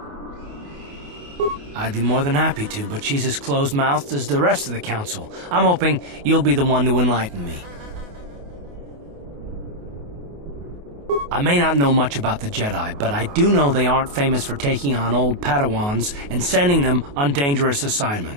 I'd be more than happy to, but she's as closed-mouthed as the rest of the Council. I'm hoping you'll be the one to enlighten me. I may not know much about the Jedi, but I do know they aren't famous for taking on old Padawans and sending them on dangerous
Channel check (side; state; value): left; late; 28 ms